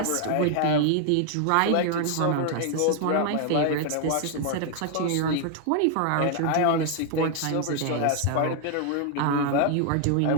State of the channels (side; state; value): both; different; correlation 0.00